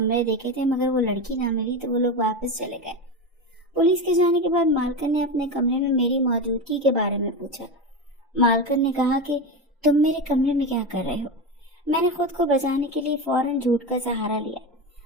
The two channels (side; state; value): both; normal; correlation 0.19